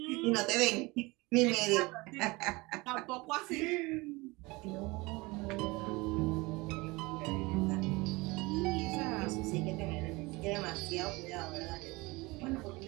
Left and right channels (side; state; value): left; quieter; 23.5 dB